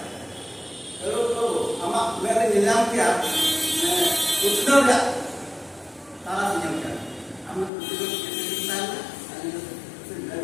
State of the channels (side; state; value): right; drops out; at 7.7 s